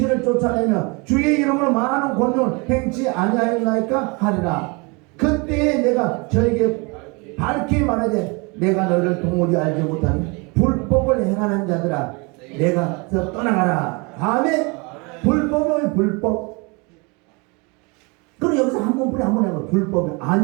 쫓아내며 주의 이름으로 많은 권능을 행치 아니하였나이까 하리라. 그때에 내가 저에게 밝히 말하되 내가 너희를 도무지 알지 못하니 불법을 행하는 자들아 내가 떠나가라. 아멘. 불법은 불법. 그럼 여기서 한번 해봐. 불법은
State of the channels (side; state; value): left; quieter; 29.5 dB